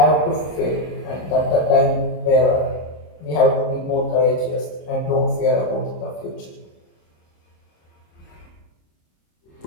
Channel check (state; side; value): late; right; 26 ms